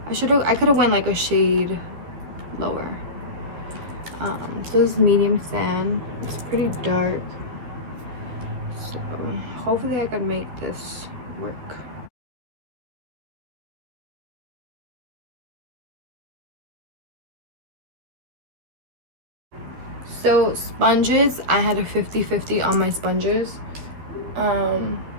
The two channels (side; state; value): left; late; 12 ms